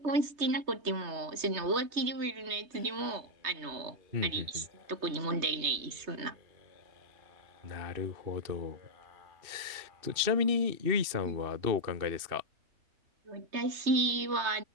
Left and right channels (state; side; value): late; left; 3.2 ms